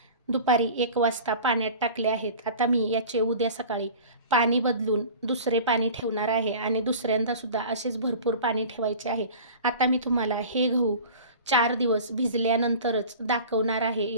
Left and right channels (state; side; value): inverted; both; correlation -0.39